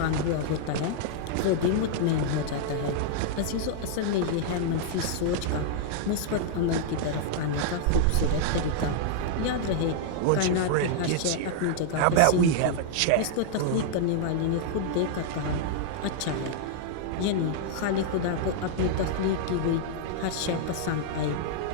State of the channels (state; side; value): different; both; correlation -0.01